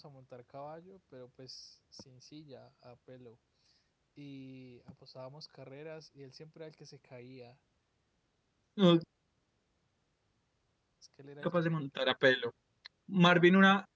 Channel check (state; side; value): identical; both; correlation 1.00